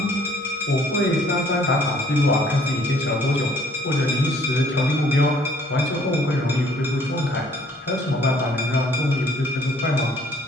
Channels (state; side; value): normal; both; correlation 0.60